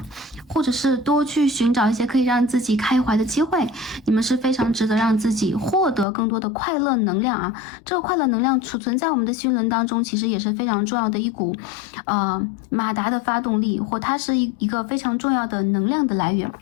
或者是多去寻找一些可以让自己开怀的机会。你们是非常值得让自己获得更多的快乐能量这个快乐能量储存在我们的心轮当中，其实也是非常重要的一股马达的发动力，或它是一个非常重要的能量的来源。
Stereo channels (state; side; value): drops out; right; at 6.1 s